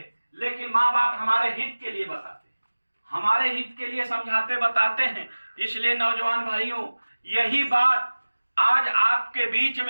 लेकिन माँ बाप हमारे हित के लिए बताते हैं, हमारे हित के लिए समझाते बताते हैं। इसलिए नौजवान भाइयों, यही बात आज आपके बीच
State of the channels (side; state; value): both; inverted; correlation -1.00